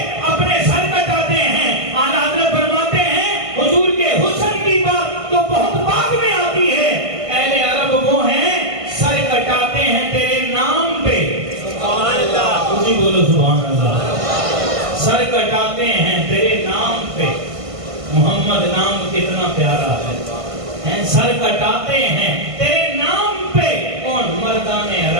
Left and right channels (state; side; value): late; left; 1.5 ms